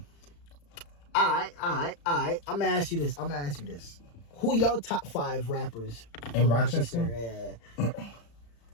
All right. I'm gonna ask you this. Who your top 5 rappers In Rochester? Yeah.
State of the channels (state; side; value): late; right; 35 ms